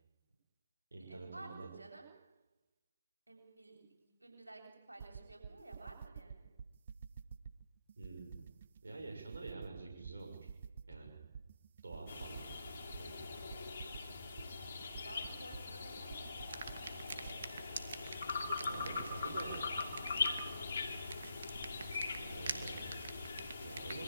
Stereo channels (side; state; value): both; inverted; correlation -0.81